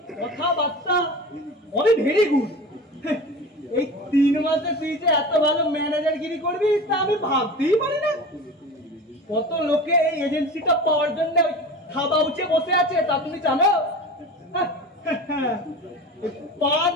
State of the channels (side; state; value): both; normal; correlation 0.33